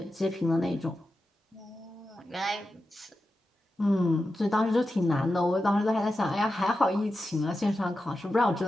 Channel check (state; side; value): normal; both; correlation 0.91